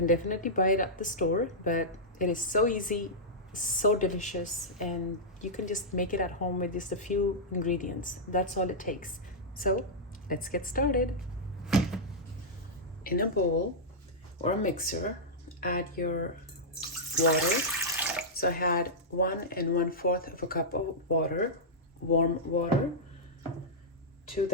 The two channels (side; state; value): both; normal; correlation -0.09